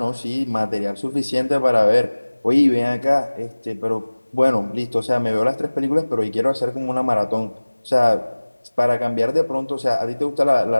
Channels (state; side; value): inverted; both; correlation -1.00